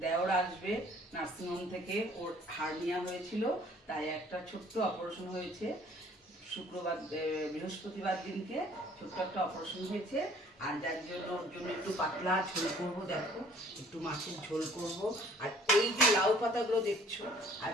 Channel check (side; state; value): both; normal; correlation 0.56